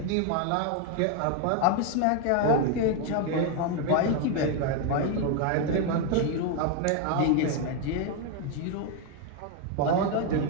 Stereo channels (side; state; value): both; different; correlation 0.01